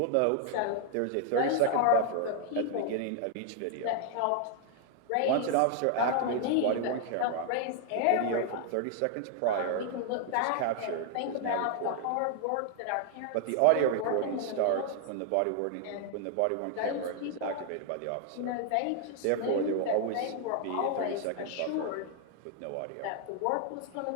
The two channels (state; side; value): different; both; correlation 0.00